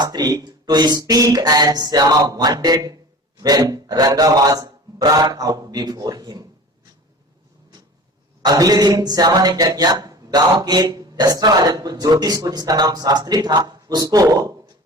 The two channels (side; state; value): both; normal; correlation 0.38